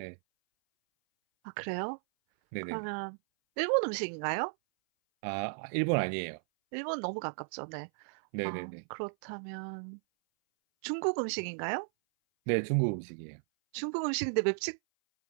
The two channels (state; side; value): silent; left; 55 dB below the other